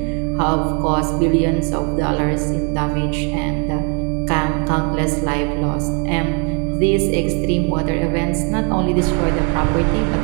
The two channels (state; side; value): quieter; left; 34.9 dB